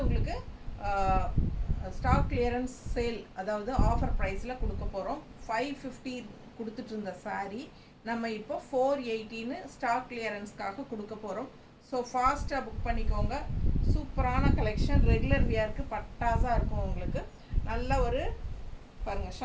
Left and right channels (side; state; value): both; identical; correlation 1.00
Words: உங்களுக்கு ஸ்டாக் கிளியரன்ஸ் சேல், அதாவது ஆஃபர் ப்ரைஸில் கொடுக்க போகிறோம். 550 கொடுத்துட்டு இருந்த saree நம்ம இப்போ 480ன்னு ஸ்டாக் கிளியரன்ஸ்க்காக கொடுக்க போகிறோம். ஸோ ஃபாஸ்ட்டாக புக் பண்ணிக்கோங்க. சூப்பரான கலெக்ஷன், ரெகுலர் வியருக்கு பட்டாஸாக இருக்கும். உங்களுக்கு நல்ல ஒரு பாருங்கள்